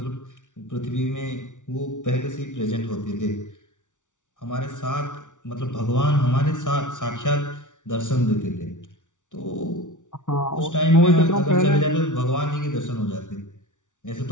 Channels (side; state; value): right; late; 0.86 ms